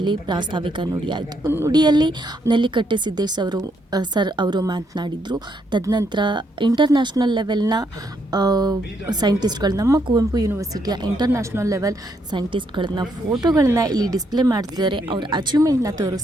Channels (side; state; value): both; normal; correlation 0.75